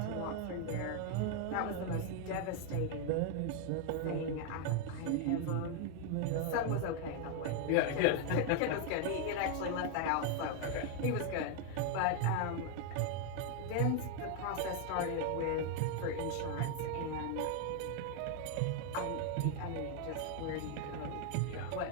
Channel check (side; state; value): both; different; correlation 0.01